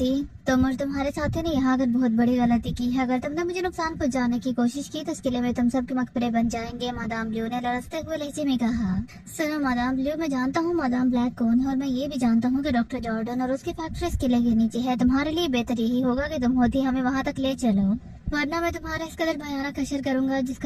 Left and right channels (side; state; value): both; identical; correlation 1.00